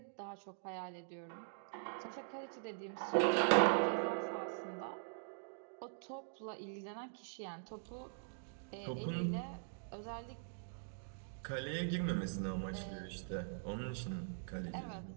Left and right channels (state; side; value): silent; left; digital silence